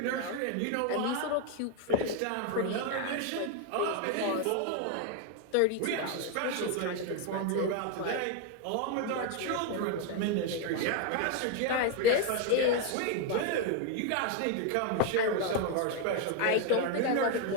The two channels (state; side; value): different; both; correlation 0.01